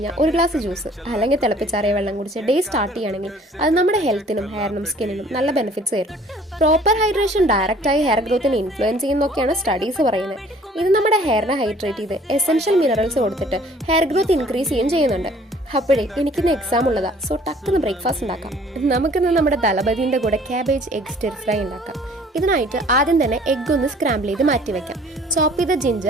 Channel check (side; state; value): both; normal; correlation 0.54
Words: ഒരു ഗ്ലാസ് ജ്യൂസ് അല്ലെങ്കിൽ തിളപ്പിച്ചാറിയ വെള്ളം കുടിച്ച് ഡേ സ്റ്റാർട്ട് ചെയ്യുകയാണെങ്കിൽ അത് നമ്മുടെ ഹെൽത്തിനും ഹെയറിനും സ്കിന്നിനും നല്ല ബെനിഫിറ്റ്സ് തരും. പ്രോപ്പർ ഹൈഡ്രേഷൻ ഡയറക്റ്റായി ഹെയർ ഗ്രോത്തിനെ ഇൻഫ്ലുവൻസ് ചെയ്യുന്നൊക്കെയാണ് സ്റ്റഡീസ് പറയുന്നത്. ഇത് നമ്മുടെ ഹെയറിനെ ഹൈഡ്രേറ്റ് ചെയ്ത് എസെൻഷ്യൽ മിനറൽസ് കൊടുത്തിട്ട് ഹെയർ ഗ്രോത്ത് ഇൻക്രീസ് ചെയ്യുകയും ചെയ്യുന്നുണ്ട്. അപ്പോഴേ എനിക്കിന്ന് എക്സാം ഉള്ളതാ, സോ ടക്കുന്ന് ബ്രേക്ക്ഫാസ്റ്റ് ഉണ്ടാക്കാം. നമുക്കിന്ന് നമ്മുടെ ദളപതിൻ്റെ കൂടെ ക്യാബേജ് എഗ് സ്റ്റിർ ഫ്രൈ ഉണ്ടാക്കാം. ഇതിനായിട്ട് ആദ്യം തന്നെ എഗ് ഒന്ന് സ്ക്രാമ്പിൾ ചെയ്ത് മാറ്റി വെക്കാം. ചോപ്പ് ചെയ്ത